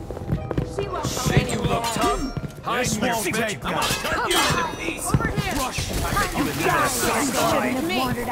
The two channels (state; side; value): identical; both; correlation 1.00